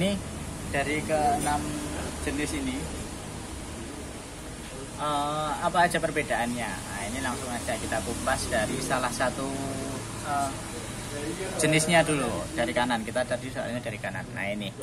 dari ke-6 jenis ini apa aja perbedaannya? Nah ini langsung aja kita kupas dari salah satu jenisnya dulu, dari kanan. Kita tadi soalnya dari kanan. Nah ini,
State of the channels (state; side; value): identical; both; correlation 1.00